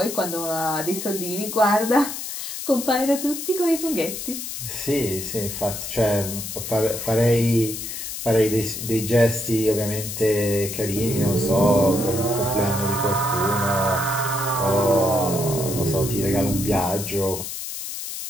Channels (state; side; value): noise; left; hiss, 7 dB below the sound